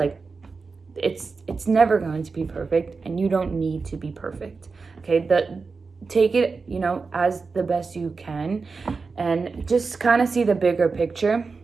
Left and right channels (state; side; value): quieter; left; 4.5 dB